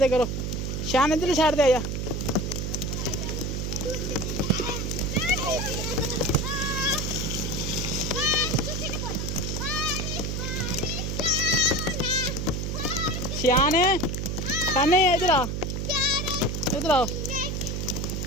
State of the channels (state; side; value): noise; right; hum, 2 dB below the sound